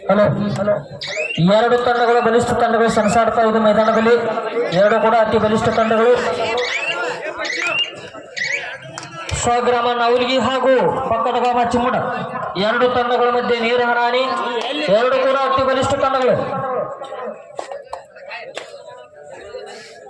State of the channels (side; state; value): both; identical; correlation 1.00